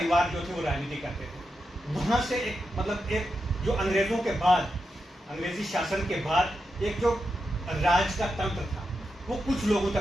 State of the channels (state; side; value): normal; both; correlation 0.88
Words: जो थे वो राजनीति करते थे। वहां से एक जो अंग्रेजों के बाद, अंग्रेजी शासन के बाद एक जो राज का तंत्र था वो कुछ लोगों